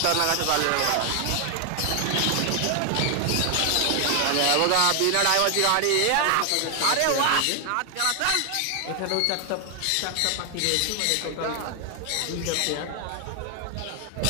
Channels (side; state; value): both; different; correlation 0.00